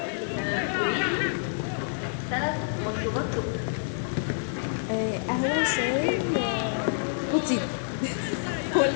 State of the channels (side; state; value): right; silent; digital silence